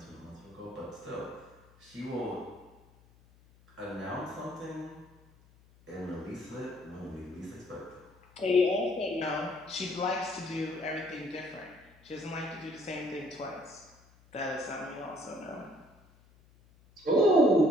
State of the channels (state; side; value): noise; left; hum, 27 dB below the sound